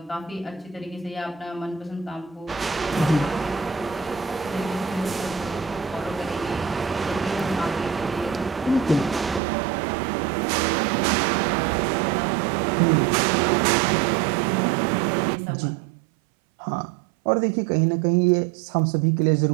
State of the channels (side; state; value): left; drops out; at 9.4 s